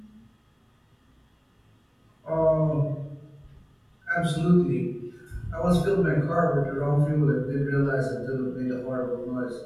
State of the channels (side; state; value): both; identical; correlation 1.00